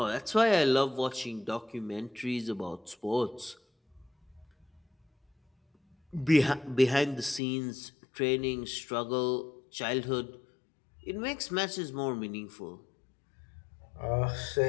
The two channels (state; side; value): drops out; right; at 7.4 s